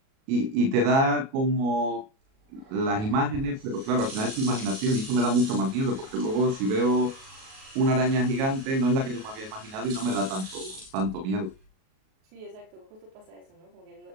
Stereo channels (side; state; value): left; late; 37 ms